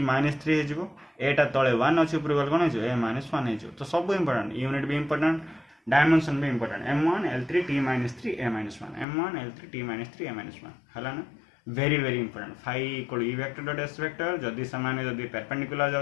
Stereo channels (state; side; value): drops out; right; at 9.1 s